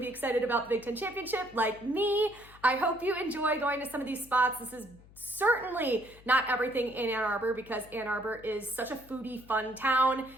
excited about the Big Ten Championship like me. I hope you enjoy going to some of these spots. This is certainly not everything in Ann Arbor because Ann Arbor is such a foodie, fun town.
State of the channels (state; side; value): noise; left; hum, 23 dB below the sound